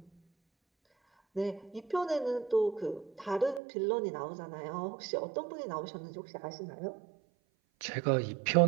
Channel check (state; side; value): drops out; left; at 3.6 s